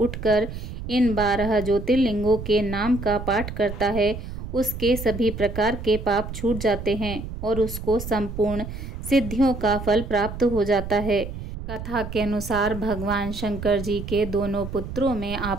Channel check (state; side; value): noise; right; rumble, 8 dB below the sound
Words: इन 12 ज्योतिर्लिंगों के नाम का पाठ करता है, उसके सभी प्रकार के पाप छूट जाते हैं और उसको संपूर्ण सिद्धियों का फल प्राप्त हो जाता है। कथा के अनुसार भगवान शंकर जी के दोनों पुत्रों में